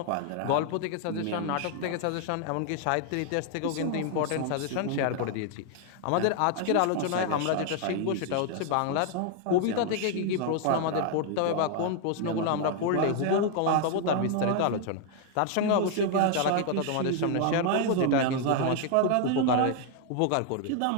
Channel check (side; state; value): both; different; correlation 0.00